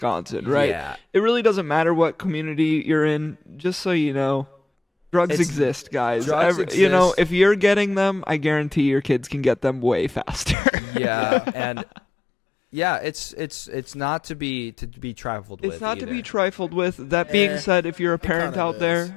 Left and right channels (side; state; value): right; drops out; at 10.6 s